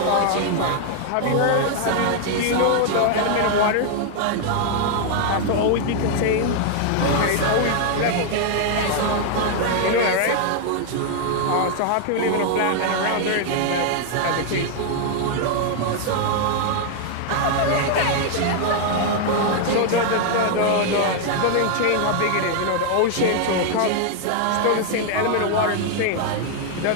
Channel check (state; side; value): different; both; correlation 0.00